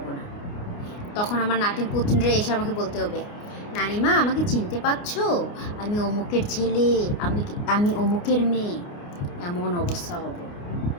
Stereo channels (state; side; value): late; right; 29 ms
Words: না। তখন আমার নাতিন পুতিনরা এসে আমাকে বলতে হবে নানিমা আমাকে চিনতে পারছো, আমি অমুকের ছেলে, আমি অমুকের মেয়ে, এমন অবস্থা হবে।